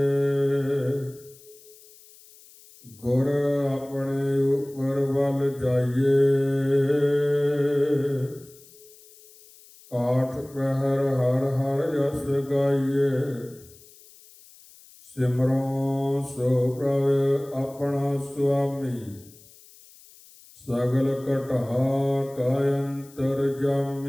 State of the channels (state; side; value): noise; left; hiss, 24 dB below the sound